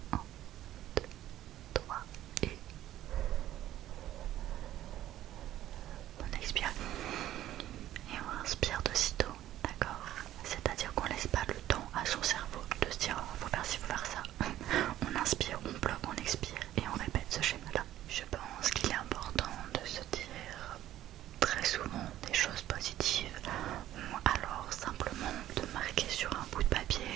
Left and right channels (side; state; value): left; quieter; 13.2 dB